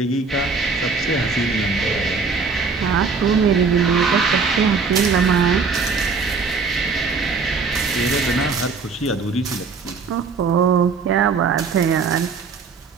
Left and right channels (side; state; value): left; quieter; 4.9 dB